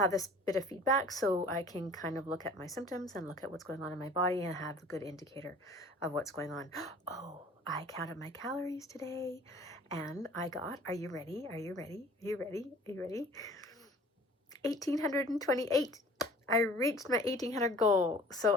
this bit of feedback so I can kind of look at my symptoms and look at what's going on in my body and have a good indicator of what's going on. Oh, I counted my calories today and I got, are you ready? Are you ready? Are you ready? Are you ready? 1,828. I reached my 1,800 goal.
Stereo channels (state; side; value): normal; both; correlation 0.48